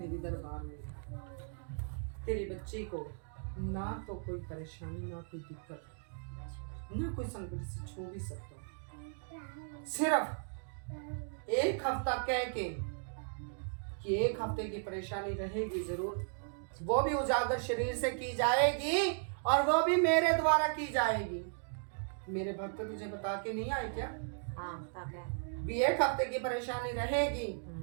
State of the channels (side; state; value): left; silent; digital silence